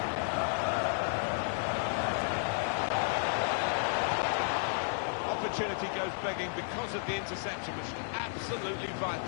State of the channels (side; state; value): right; silent; 56 dB below the other